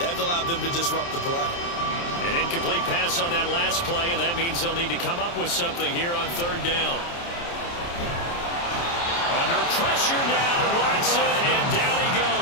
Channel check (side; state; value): right; late; 29 ms